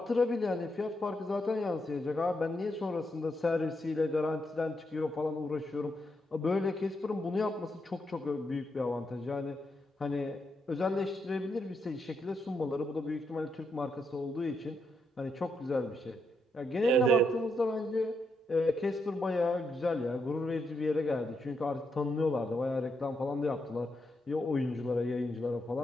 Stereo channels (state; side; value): normal; both; correlation 0.81